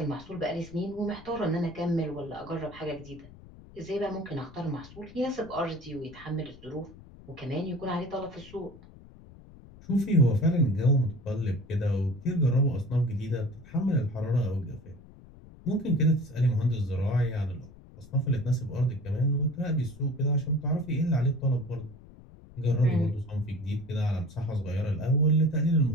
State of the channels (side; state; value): left; noise; rumble, 20 dB below the sound